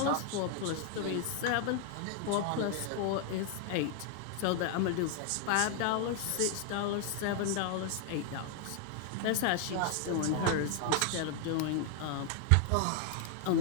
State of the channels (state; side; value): different; both; correlation 0.00